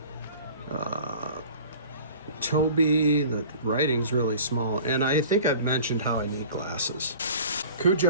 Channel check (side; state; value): both; inverted; correlation -0.44